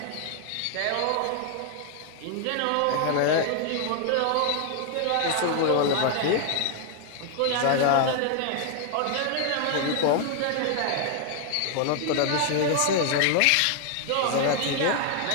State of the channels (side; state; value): both; different; correlation 0.00